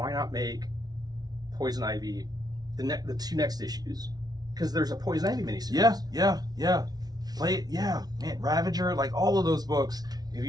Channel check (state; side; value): late; left; 0.19 ms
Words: not make Poison Ivy the 2 next issues? Because there's a Poison Ivy miniseries. Yeah. Play it. Yeah, man. Ravager, like all of those books. If